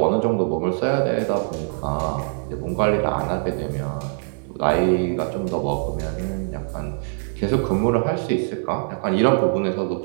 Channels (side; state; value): left; silent; 62 dB below the other